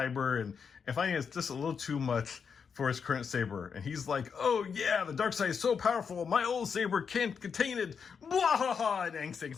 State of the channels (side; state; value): right; quieter; 6.3 dB